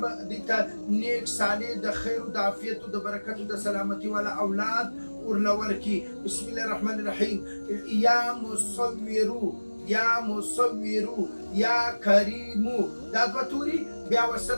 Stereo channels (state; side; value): inverted; both; correlation -1.00